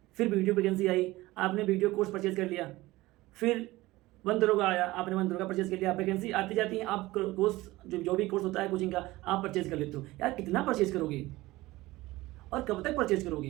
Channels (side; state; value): left; quieter; 18.9 dB